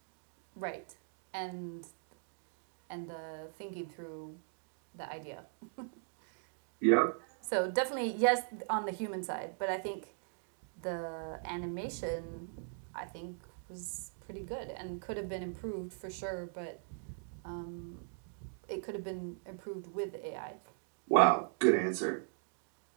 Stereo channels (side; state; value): left; silent; digital silence